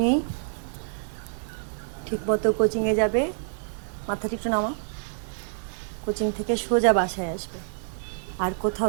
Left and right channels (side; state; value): left; silent; digital silence